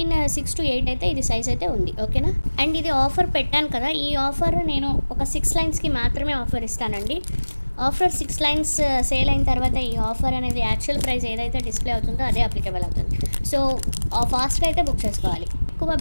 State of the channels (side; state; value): both; inverted; correlation -1.00